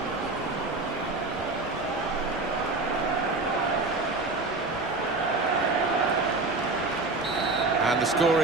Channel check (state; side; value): quieter; left; 3.4 dB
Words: And the score